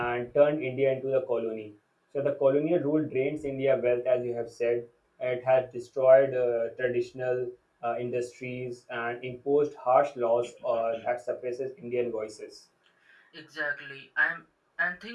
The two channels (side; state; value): both; identical; correlation 1.00